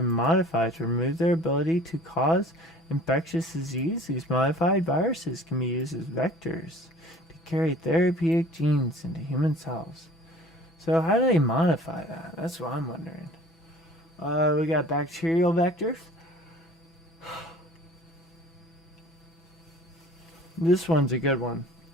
modified to remove their ability to cause infectious disease, these modified viruses can be used as vectors to carry therapeutic genes into human cells. So how do they modify that? That's what I'm wondering. We got bacterial vectors. This one's a good one.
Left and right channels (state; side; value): normal; both; correlation 0.47